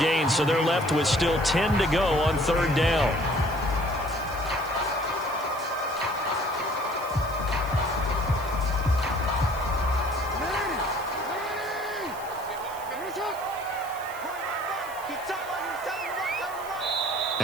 so they're left with still 10 to go on 3rd down.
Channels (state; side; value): noise; right; hiss, 18 dB below the sound